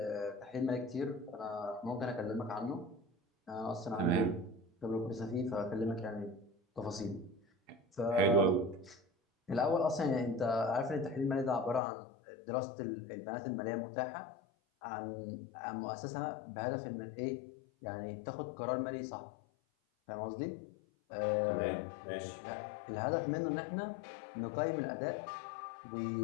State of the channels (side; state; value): right; drops out; at 11.8 s